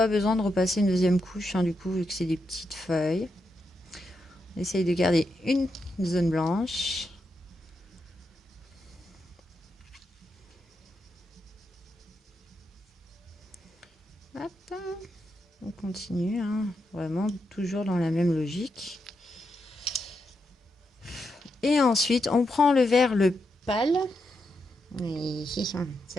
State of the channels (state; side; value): normal; both; correlation 0.84